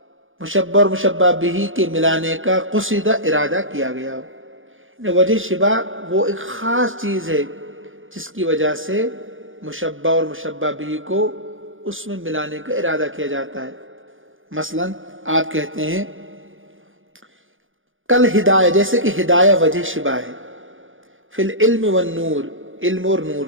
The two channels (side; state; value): left; late; 0.58 ms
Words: مشبہ اور مشبہ بہ کے ملانے کا قصد ارادہ کیا گیا ہو۔ یعنی وجہ شبہ وہ ایک خاص چیز ہے جس کی وجہ سے مشبہ اور مشبہ بہ کو اس میں ملانے کا ارادہ کیا جاتا ہے۔ مثلا آپ کہتے ہیں کل ہدایہ، جیسے کہ ہدایہ وجہ شبہ ہے، فی العلم والنور، علم اور نور